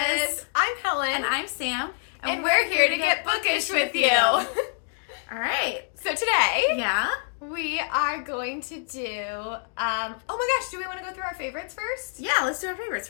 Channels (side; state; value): right; silent; digital silence